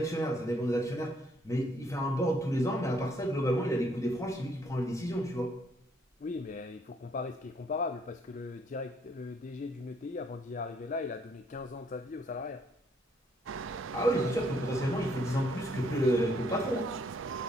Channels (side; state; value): both; normal; correlation 0.68